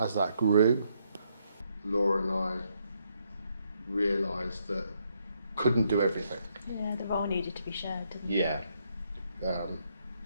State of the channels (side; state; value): both; inverted; correlation -0.75